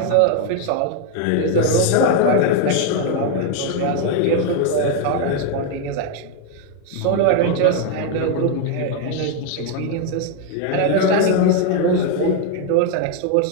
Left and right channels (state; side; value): different; both; correlation 0.01